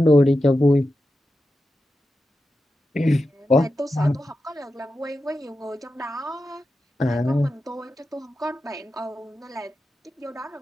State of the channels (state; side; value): normal; both; correlation 0.90